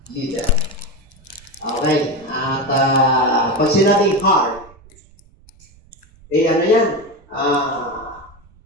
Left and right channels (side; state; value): right; noise; rumble, 28 dB below the sound